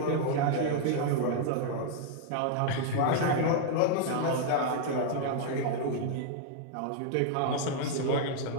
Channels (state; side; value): different; both; correlation 0.00